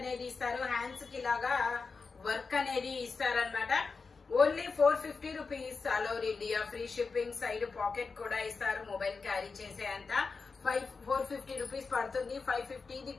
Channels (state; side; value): quieter; right; 4.6 dB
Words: ఇస్తారు, హ్యాండ్స్ కి ఇలాగా వర్క్ అనేది ఇస్తారనమాట. Only 450 rupees, all over India free shipping, side pocket కూడా ఇస్తారు, మొబైల్ క్యారీ చేసే అంత 450 రూపీస్ పడుతుంది. 550